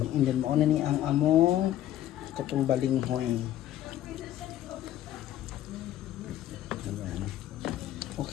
And then mauna ni ang among katong balinghoy. Ayan.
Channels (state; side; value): quieter; right; 12.7 dB